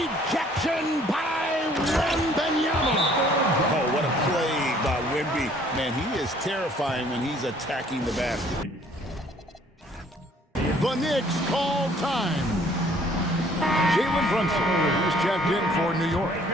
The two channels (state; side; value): normal; both; correlation 0.59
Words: by Wembanyama. Oh, what a play by Wemby. Man, he is terrifying when he's attacking the basket. The Knicks call time. Jalen Brunson is checked in for New York.